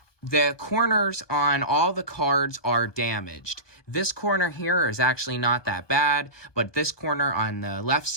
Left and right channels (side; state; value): right; late; 1.2 ms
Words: the corners on all the cards are damaged. This corner here is actually not that bad, but this corner on the left